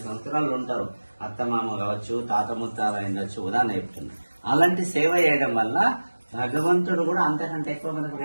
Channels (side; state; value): both; inverted; correlation -1.00